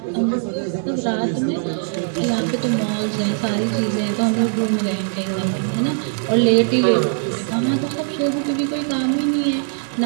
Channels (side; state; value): left; silent; digital silence